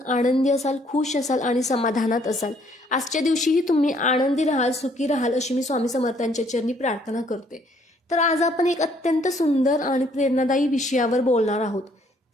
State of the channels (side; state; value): both; normal; correlation 0.65